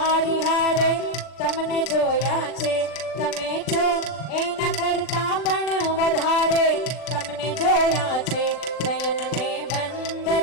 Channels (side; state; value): right; late; 39 ms